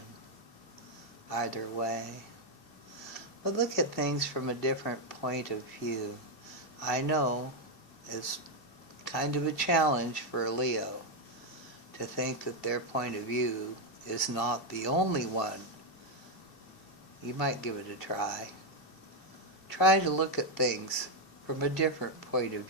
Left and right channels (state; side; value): late; right; 2.7 ms